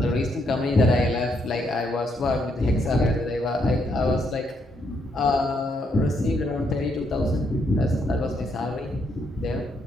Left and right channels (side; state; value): both; normal; correlation 0.75